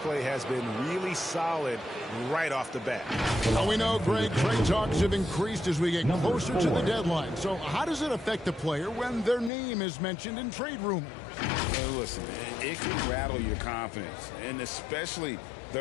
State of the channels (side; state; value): right; drops out; at 9.5 s